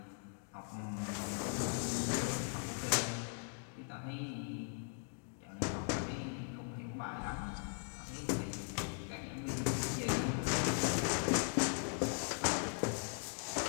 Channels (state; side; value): silent; right; 51 dB below the other